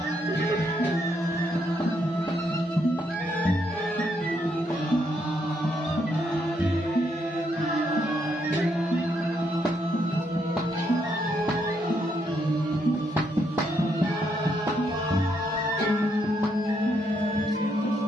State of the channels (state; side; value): normal; both; correlation 0.76